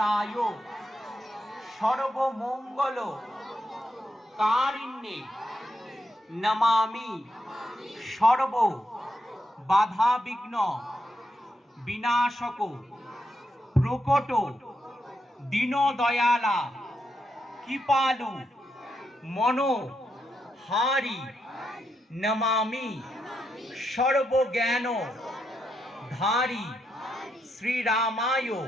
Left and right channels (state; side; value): normal; both; correlation 0.82